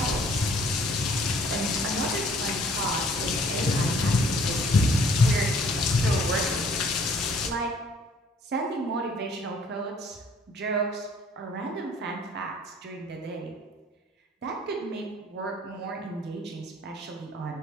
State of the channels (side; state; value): both; normal; correlation 0.58